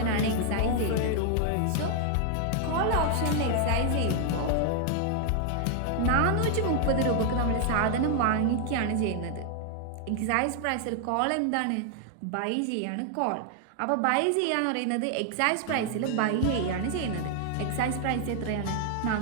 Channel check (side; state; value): both; different; correlation 0.00